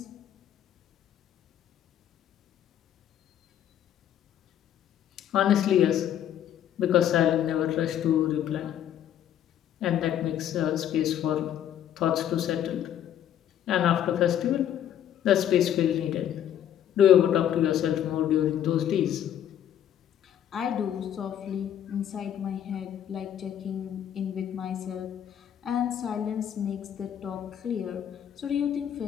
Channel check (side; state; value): right; quieter; 10.3 dB